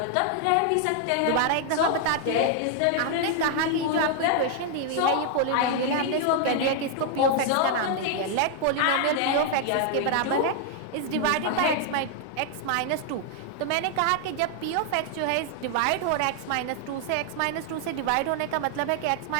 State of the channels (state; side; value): different; both; correlation 0.00